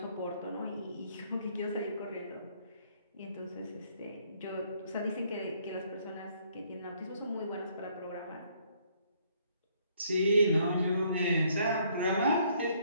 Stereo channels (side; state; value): both; inverted; correlation -0.66